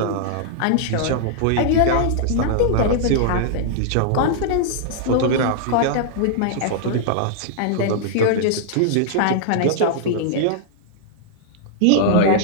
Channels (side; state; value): both; different; correlation -0.01